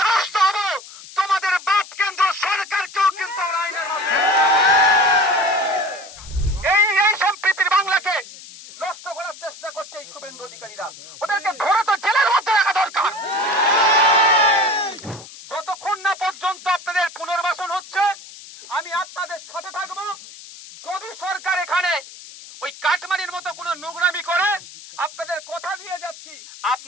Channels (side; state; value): left; noise; hiss, 17 dB below the sound